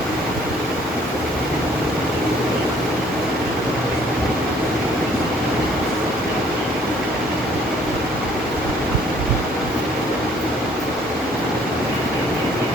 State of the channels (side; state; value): both; normal; correlation 0.59